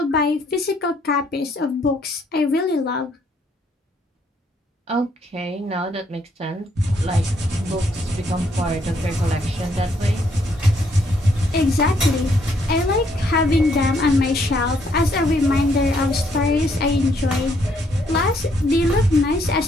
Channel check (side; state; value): both; normal; correlation 0.70